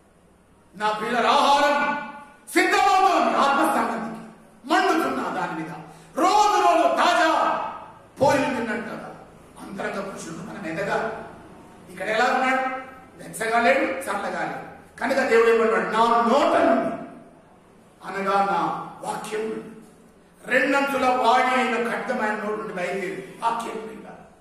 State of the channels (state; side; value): identical; both; correlation 1.00